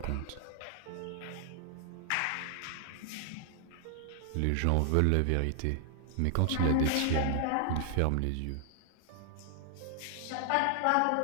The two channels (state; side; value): different; both; correlation 0.00